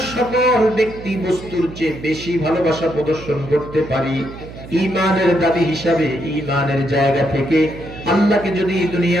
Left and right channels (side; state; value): right; noise; hum, 14 dB below the sound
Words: সকল ব্যক্তি বস্তুর চেয়ে বেশি ভালোবাসা প্রদর্শন করতে পারি, ঈমানের দাবি হিসাবে, ঈমানের জায়গা থেকে আল্লাহকে যদি